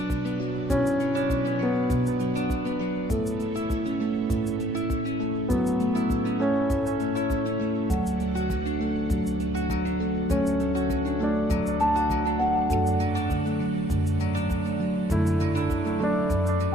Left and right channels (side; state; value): right; noise; rumble, 16 dB below the sound